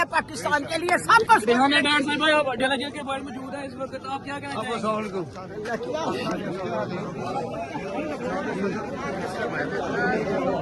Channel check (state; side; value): identical; both; correlation 1.00